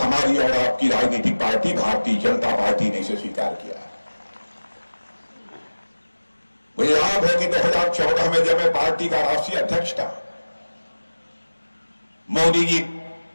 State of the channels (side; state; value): both; inverted; correlation -1.00